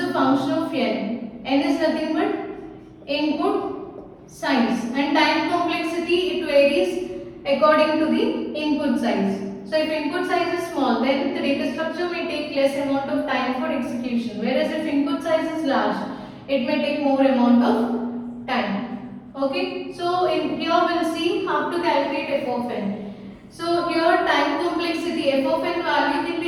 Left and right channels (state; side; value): identical; both; correlation 1.00